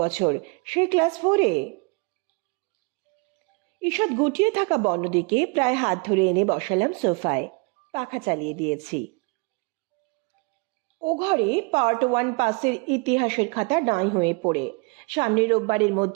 বছর, সেই ক্লাস 4-এ। ঈষৎ গুটিয়ে থাকা বনদিকে প্রায় হাত ধরে এনে বসালাম সোফায়। পাখা চালিয়ে দিয়েছি। ও ঘরে পার্ট 1 পাসের ইতিহাসের খাতা নাই হয়ে পড়ে। সামনের রোববারের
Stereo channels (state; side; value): quieter; left; 30.6 dB